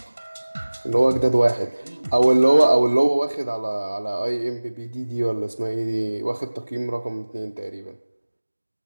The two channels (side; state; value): both; inverted; correlation -1.00